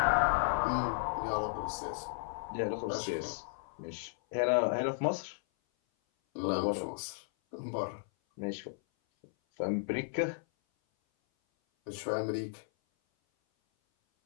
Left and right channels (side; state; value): right; silent; 55 dB below the other